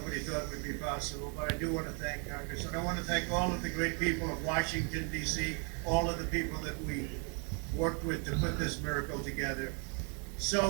thought would be possible. But I do want to thank Congress. And I want to thank all of the great people of Washington, D.C., all of the people that we worked with to put this miracle together.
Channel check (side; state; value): left; quieter; 37.3 dB